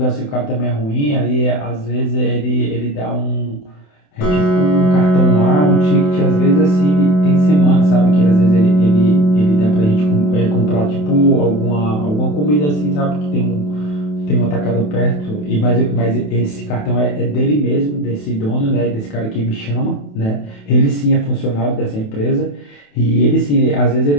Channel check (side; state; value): right; late; 28 ms